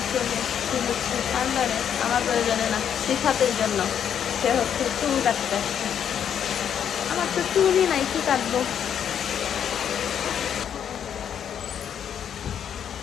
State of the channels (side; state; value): right; quieter; 8.7 dB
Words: চলে এসেছি হচ্ছে পার্লারে, আমার প্রয়োজনে না, সিফাতের জন্য। সে হচ্ছে চুল কাটতে আসছে। আমার তো চুলই নাই, কি কাটবো?